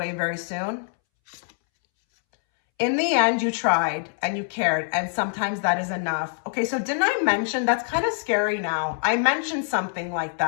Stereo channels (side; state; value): right; silent; 62 dB below the other